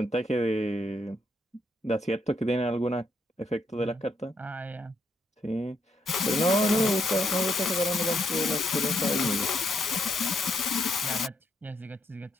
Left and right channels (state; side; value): normal; both; correlation 0.75